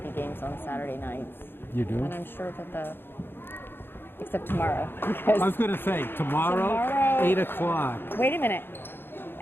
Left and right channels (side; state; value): right; late; 0.10 ms